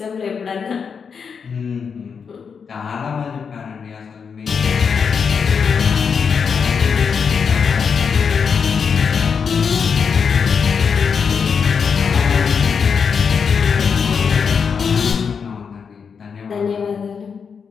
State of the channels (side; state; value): right; quieter; 6.2 dB